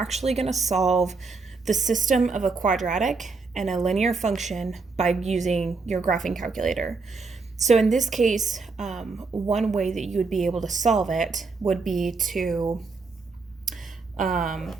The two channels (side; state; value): left; quieter; 4.3 dB